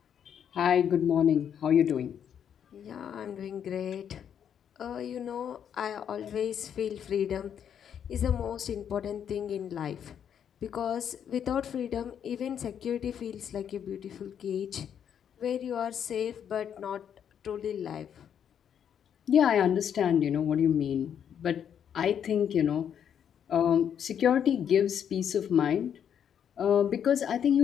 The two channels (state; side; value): quieter; right; 8.6 dB